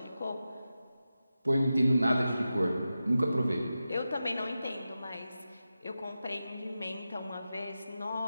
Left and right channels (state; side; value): inverted; both; correlation -0.92